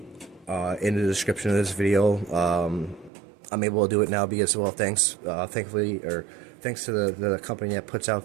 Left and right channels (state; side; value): drops out; left; at 3.1 s